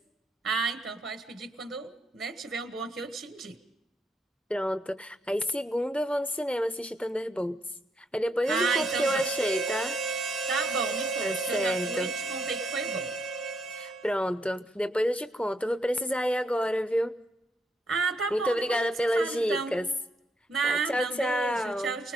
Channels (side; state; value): both; normal; correlation 0.76